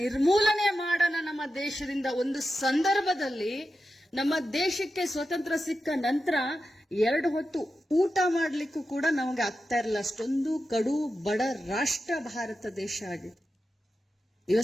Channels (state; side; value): normal; both; correlation 0.90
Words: ನಿರ್ಮೂಲನೆ ಮಾಡೋಣ ನಮ್ಮ ದೇಶದಿಂದ. ಒಂದು ಸಂದರ್ಭದಲ್ಲಿ ನಮ್ಮ ದೇಶಕ್ಕೆ ಸ್ವತಂತ್ರ ಸಿಕ್ಕ ನಂತರ 2 ಹೊತ್ತು ಊಟ ಮಾಡ್ಲಿಕ್ಕೂ ಕೂಡ ನಮಗೆ ಆಗ್ತಾ ಇರಲಿಲ್ಲ, ಅಷ್ಟೊಂದು ಕಡು ಬಡ ರಾಷ್ಟ್ರ ಭಾರತ ದೇಶ ಆಗಿದೆ.